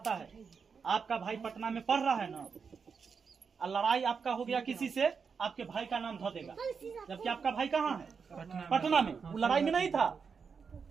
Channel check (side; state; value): left; quieter; 5.8 dB